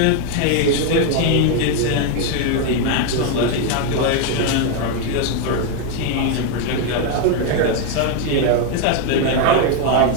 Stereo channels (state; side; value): different; both; correlation 0.01